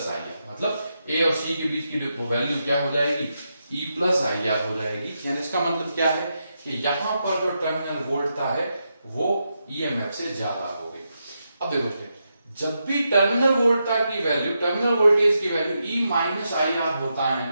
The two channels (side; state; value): both; inverted; correlation -0.85